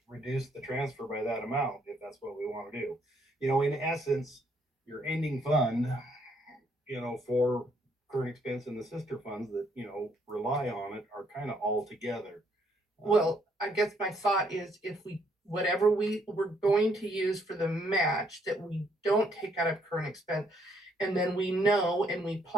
reduce the transfer by that amount if that's what we want to do. In essence, your ending fund, for current expense and the sister funds that, rely on it are kind of all together. Well, I guess my thought is if whatever we were going to use for the match, that we don't take out of current expense. And then we know and we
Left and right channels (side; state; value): both; normal; correlation 0.70